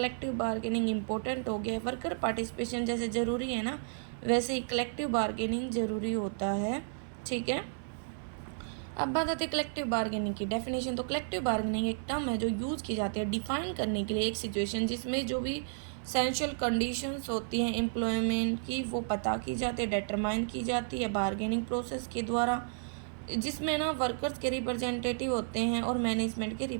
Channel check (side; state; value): left; silent; digital silence